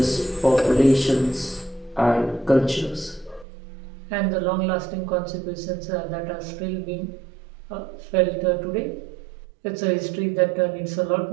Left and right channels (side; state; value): left; drops out; at 3.5 s